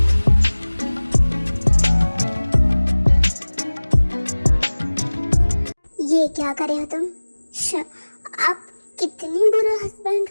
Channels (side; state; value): both; inverted; correlation -1.00